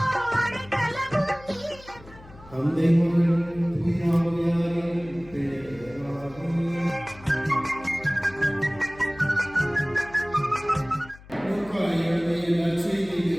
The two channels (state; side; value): noise; left; hum, 21 dB below the sound